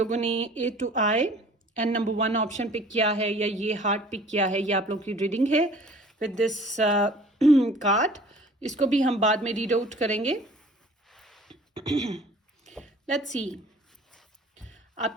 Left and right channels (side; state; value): both; normal; correlation 0.50